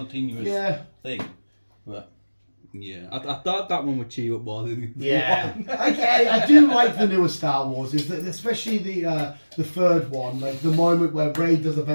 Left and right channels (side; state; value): both; inverted; correlation -1.00